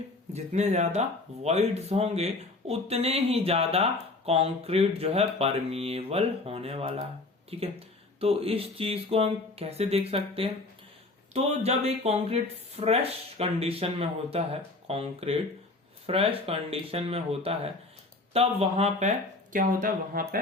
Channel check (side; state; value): right; quieter; 3.2 dB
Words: होंगे उतने ही ज्यादा कंक्रीट जो है परमिएबल होने वाला है, ठीक है। तो इस चीज को हम कैसे देख सकते हैं, तो जब एक कंक्रीट फ्रेश कंडीशन में होता है, कंक्रीट फ्रेश कंडीशन में होता है, तब वहां पे क्या होता है, वहां